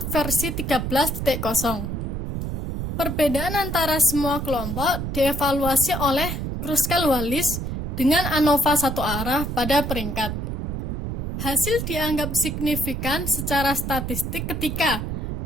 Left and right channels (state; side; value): noise; right; rumble, 3 dB below the sound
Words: versi 13.0. Perbedaan antara semua kelompok dievaluasi oleh Kruskal-Wallis dengan ANOVA satu arah pada peringkat. Hasil dianggap signifikan secara statistik ketika